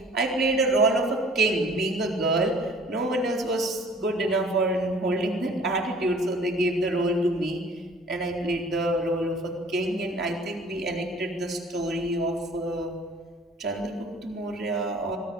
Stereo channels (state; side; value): normal; both; correlation 0.51